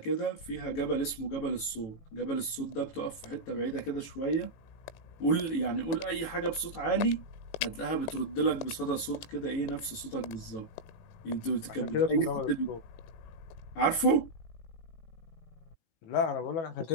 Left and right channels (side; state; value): right; late; 18 ms